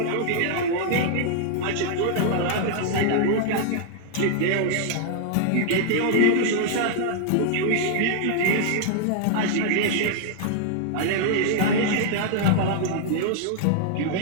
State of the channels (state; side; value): different; both; correlation 0.00